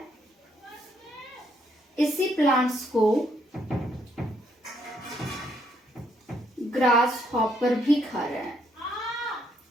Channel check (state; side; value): normal; both; correlation 0.73